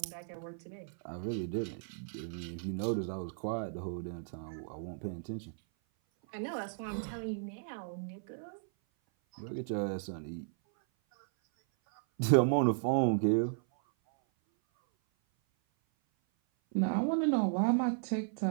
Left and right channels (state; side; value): silent; left; 54 dB below the other